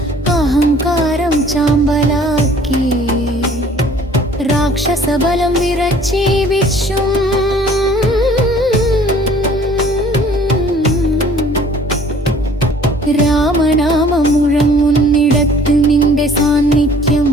അഹങ്കാരം ചാമ്പലാക്കി. രാക്ഷസബലം വിറച്ചി വിശ്വം രാമനാമം മുഴങ്ങുന്നിടത്ത് നിന്റെ സാന്നിധ്യം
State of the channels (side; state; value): both; normal; correlation 0.53